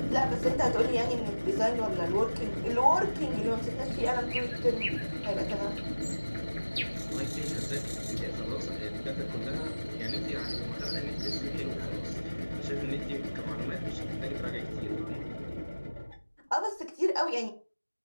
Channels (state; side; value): inverted; both; correlation -1.00